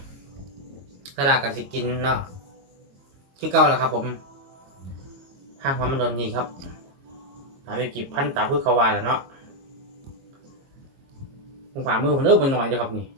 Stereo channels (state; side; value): late; left; 22 ms